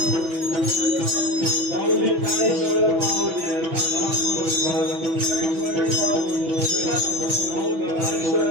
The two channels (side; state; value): left; late; 6.1 ms